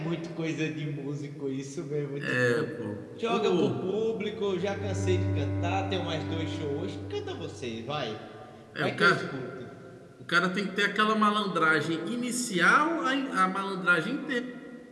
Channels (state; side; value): identical; both; correlation 1.00